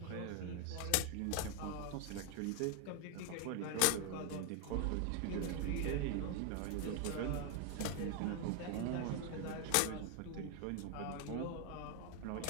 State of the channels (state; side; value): different; both; correlation 0.01